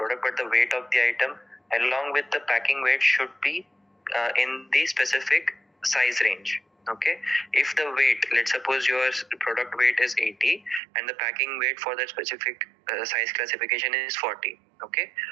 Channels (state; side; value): drops out; left; at 10.8 s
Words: but the weight of the item along with the packing weight should be in the specific size range. Okay, if the weight, let's suppose your product weight is 80 and the packing weight for that specific size classification is 40. Okay,